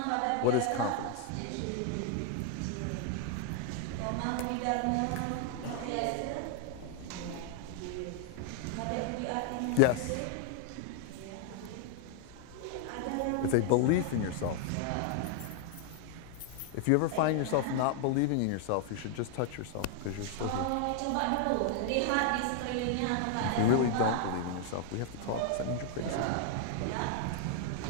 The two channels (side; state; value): both; different; correlation 0.00